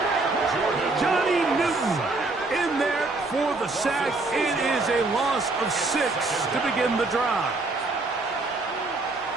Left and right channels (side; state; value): left; quieter; 3.3 dB